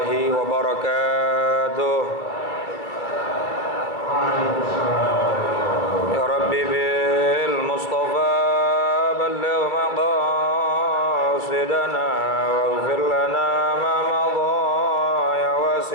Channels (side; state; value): right; late; 2.4 ms